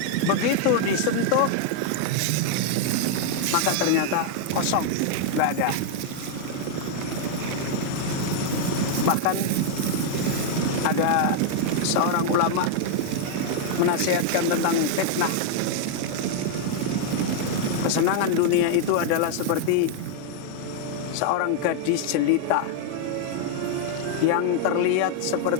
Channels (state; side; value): different; both; correlation 0.00